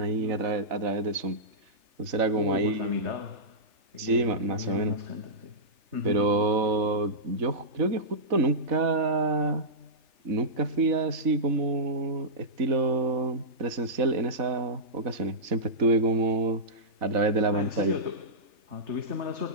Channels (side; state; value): left; late; 3.4 ms